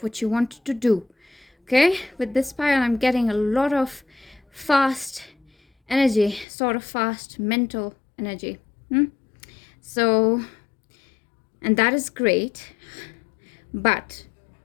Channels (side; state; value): right; drops out; at 6.5 s